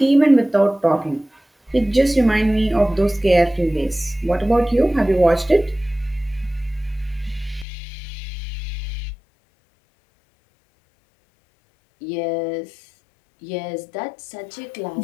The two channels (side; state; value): right; drops out; at 7.7 s